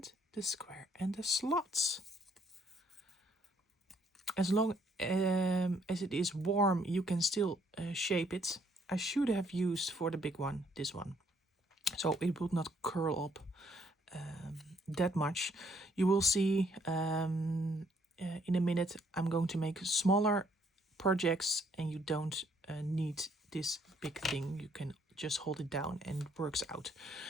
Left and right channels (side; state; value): both; normal; correlation 0.67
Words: the square, and the slots. As long as it is warm, you can still shape it. I should have used for the big one, this one. So it would not curl up that much. You will see in a minute I'm going to make smaller projects and you don't need this big thing. You can just hold it down and it works out.